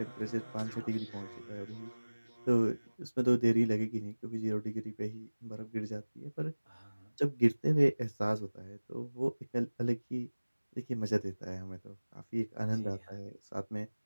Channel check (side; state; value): both; inverted; correlation -1.00